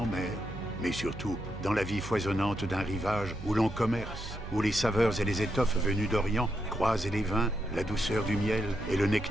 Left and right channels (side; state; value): right; noise; hum, 12 dB below the sound